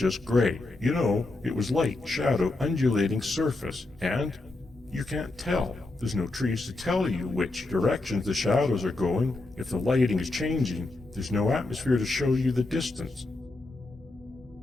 gray. You know, it was light, shadow, undulating surface, and you can't tell. There's no trees to tell you which directions the shadows are going. If the lighting is changing, there's no atmosphere to show you the distance.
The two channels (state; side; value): quieter; right; 3.1 dB